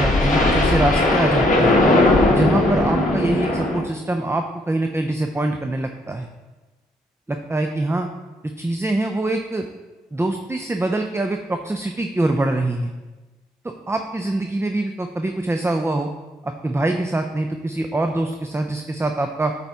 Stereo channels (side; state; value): both; normal; correlation 0.73